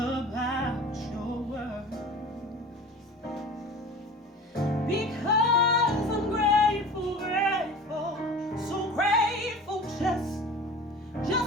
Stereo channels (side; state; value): both; normal; correlation 0.38